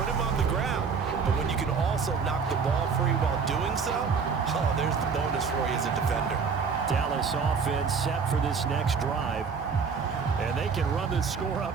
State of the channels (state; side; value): quieter; left; 5.6 dB